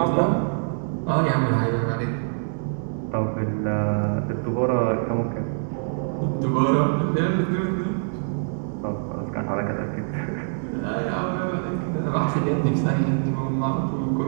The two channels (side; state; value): left; silent; digital silence